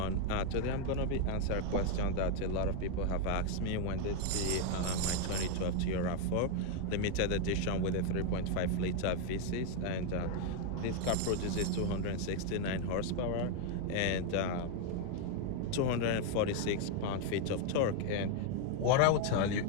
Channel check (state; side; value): different; both; correlation 0.01